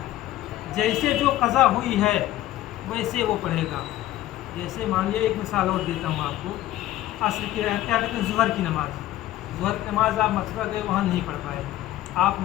जैसे जो कज़ा हुई है वैसे वो पढ़ेगा। जैसे मान लिया, एक मिसाल और देता हूँ आपको, असर के क्या कहते हैं ज़ुहर की नमाज़, ज़ुहर की नमाज़ आप मथुरा गए वहाँ नहीं पढ़ पाए, आप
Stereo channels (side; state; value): right; quieter; 14.7 dB